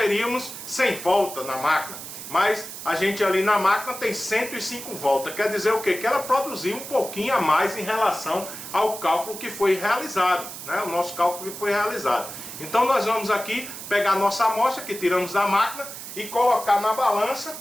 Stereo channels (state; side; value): noise; right; hiss, 10 dB below the sound